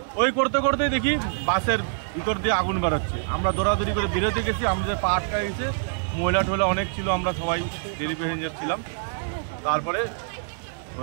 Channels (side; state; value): left; silent; digital silence